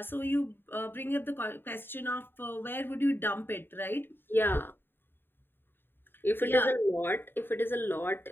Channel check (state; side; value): late; right; 0.10 ms